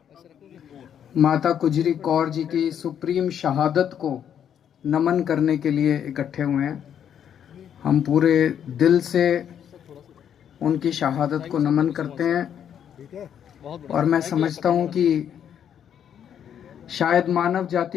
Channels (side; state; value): right; quieter; 9.0 dB